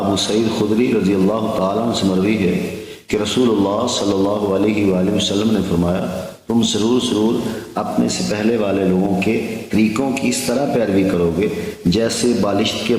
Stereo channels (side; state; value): both; identical; correlation 1.00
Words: سعید خدری رضی اللہ تعالیٰ عنہ سے مروی ہے کہ رسول اللہ صلی اللہ علیہ وآلہ وسلم نے فرمایا، تم ضرور اپنے سے پہلے والے لوگوں کے طریقوں کی اس طرح پیروی کرو گے جیسے بالشت کے